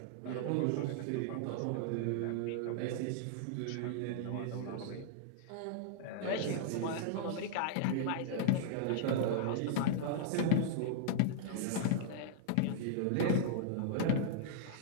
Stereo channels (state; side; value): different; both; correlation -0.01